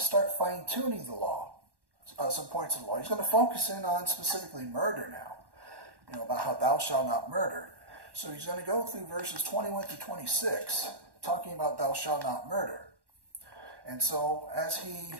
fine-tuning the law, some points of the law. He's going to focus in on specifically murder now, you know, about how thou shalt not murder. So he's going to go through verses 21 through 26, talking about thou shalt not murder. And so as he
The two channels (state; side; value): late; left; 1.1 ms